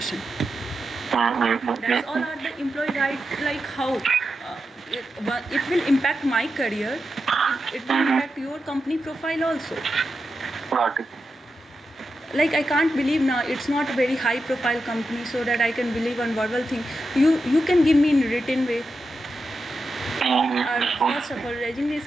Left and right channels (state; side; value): normal; both; correlation 0.89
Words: That's all are the employee rights. Like how it will impact my career. It will impact your company profile also. Got it. Like I can't believe now it's not a very high profile company, so that I can believe on verbal thing. You can give me in written way. First of all,